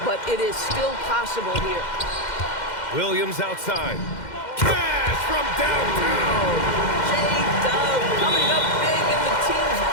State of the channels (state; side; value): late; right; 2.1 ms